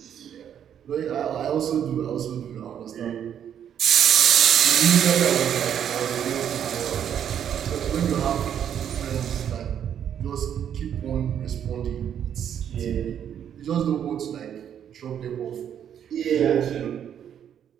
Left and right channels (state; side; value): quieter; left; 9.2 dB